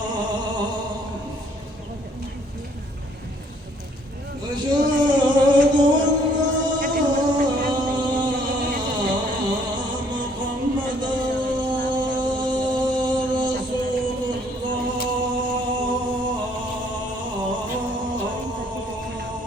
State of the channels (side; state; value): both; normal; correlation 0.63